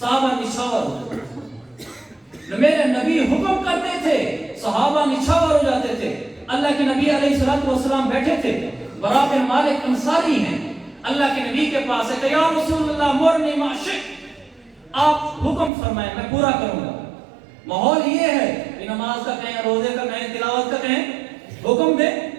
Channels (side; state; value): left; drops out; at 15.7 s